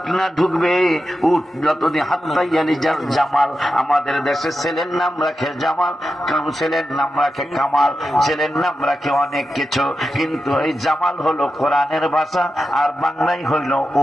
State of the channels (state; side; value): normal; both; correlation 0.90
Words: না ঢুকবে, উট যতদিন হাত্তাইয়ালি জামাল, আমাদের দেশে ছেলের নাম রাখে জামাল, ছেলের নাম রাখে কামাল, ছেলের নাম রাখে অনেক কিছু, কিন্তু এই জামাল হলো কোরআনের ভাষা আর বাংলাই হইল